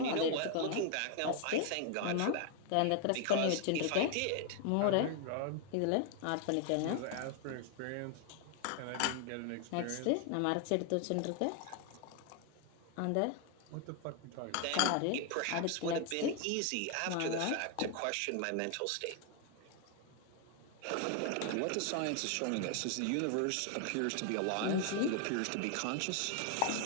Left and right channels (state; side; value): different; both; correlation 0.00